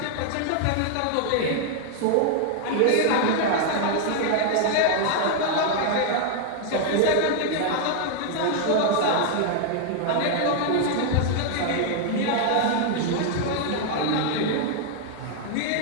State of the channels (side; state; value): both; different; correlation 0.00